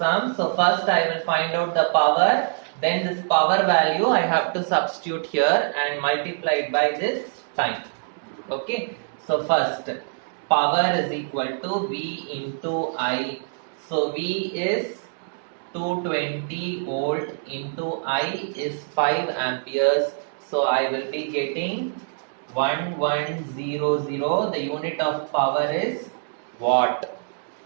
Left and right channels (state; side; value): silent; left; digital silence